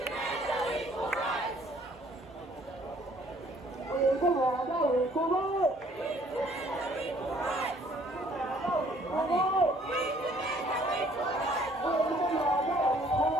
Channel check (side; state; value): both; normal; correlation 0.59